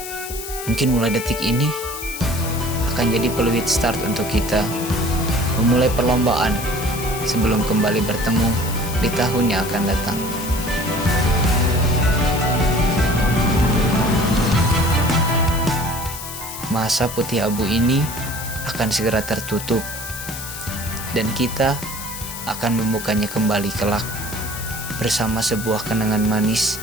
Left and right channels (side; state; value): left; noise; hiss, 9 dB below the sound